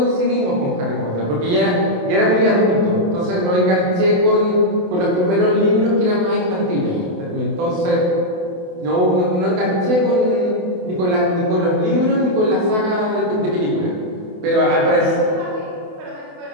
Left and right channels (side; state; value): left; late; 28 ms